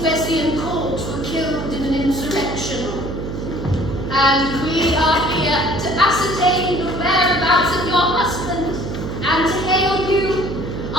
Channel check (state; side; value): noise; right; hum, 6 dB below the sound